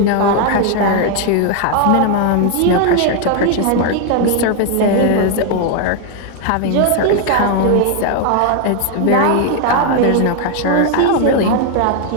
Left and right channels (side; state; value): both; different; correlation 0.00